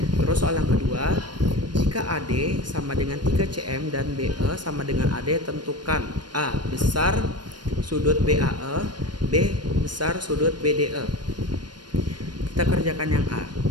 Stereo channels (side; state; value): left; late; 0.70 ms